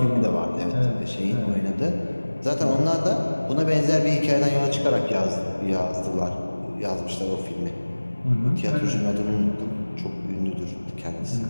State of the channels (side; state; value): both; inverted; correlation -1.00